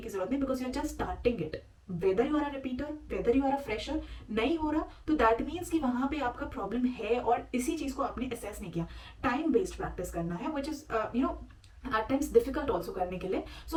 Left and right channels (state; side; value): identical; both; correlation 1.00